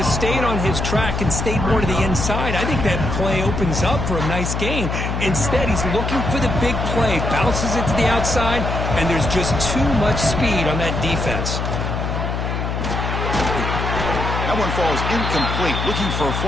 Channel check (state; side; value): noise; left; hum, 2 dB below the sound